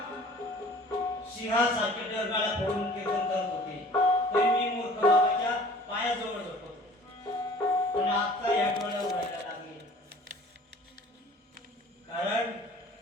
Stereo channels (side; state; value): both; normal; correlation 0.48